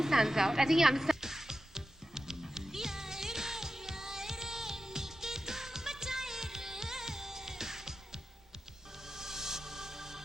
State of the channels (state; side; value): normal; both; correlation 0.91